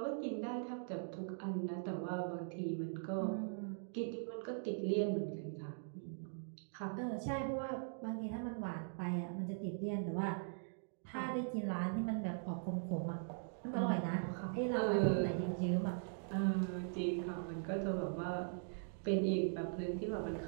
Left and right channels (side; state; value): left; silent; digital silence